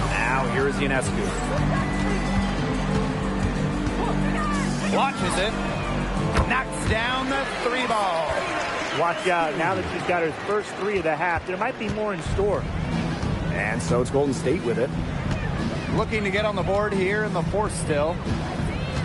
Now here's Ionescu. Launches it. Knocks down the three ball. Watch out, now that she's got her first three of the half, there might be more in store. And so it's Golden State with it. Looking to get on the board here in the fourth still.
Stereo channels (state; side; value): identical; both; correlation 1.00